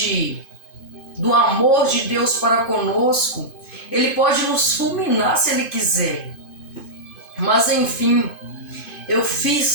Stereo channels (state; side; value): late; right; 2.5 ms